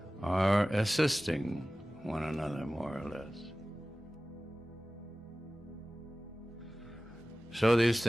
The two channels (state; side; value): normal; both; correlation 0.97